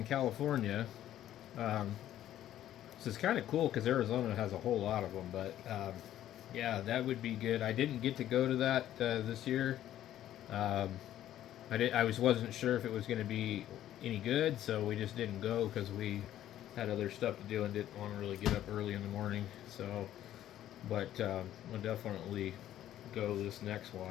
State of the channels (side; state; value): right; quieter; 12.3 dB